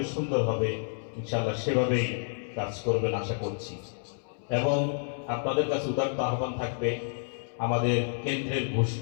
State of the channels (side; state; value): right; silent; 58 dB below the other